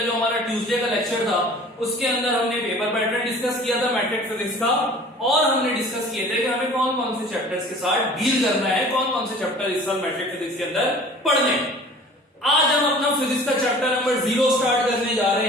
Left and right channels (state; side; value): normal; both; correlation 0.46